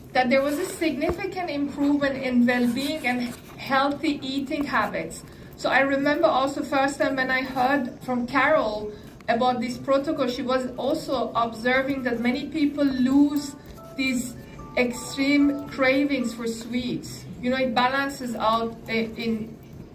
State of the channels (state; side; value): identical; both; correlation 1.00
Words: that there was a significant improvement in well-being and healthy eating habits. So I remember also first time when I heard from Carol about this protocol, she was also observing that many people lose these extreme cravings for sweets. You know, it balances out in,